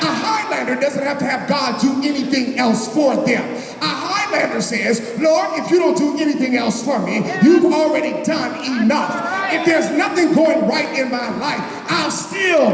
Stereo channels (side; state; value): both; identical; correlation 1.00